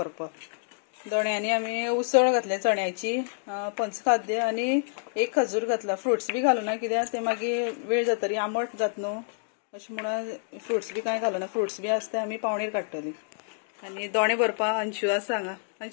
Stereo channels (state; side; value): silent; right; digital silence